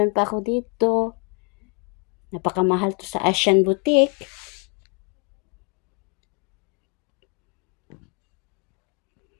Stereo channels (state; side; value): quieter; right; 32.1 dB